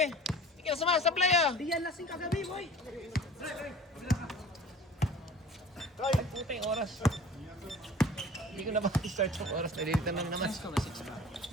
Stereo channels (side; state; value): both; normal; correlation 0.43